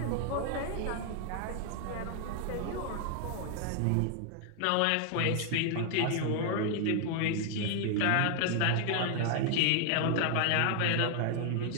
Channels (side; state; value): both; different; correlation 0.00